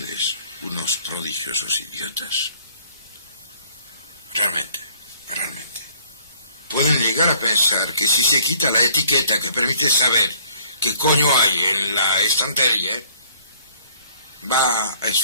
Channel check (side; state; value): both; inverted; correlation -0.59